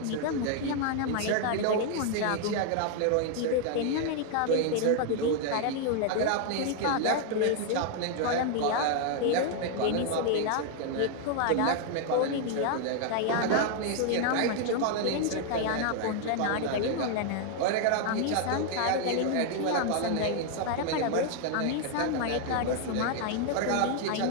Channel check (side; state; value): both; different; correlation 0.00